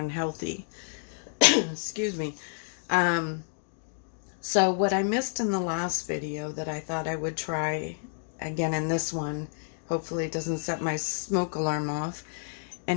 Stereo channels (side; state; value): right; silent; digital silence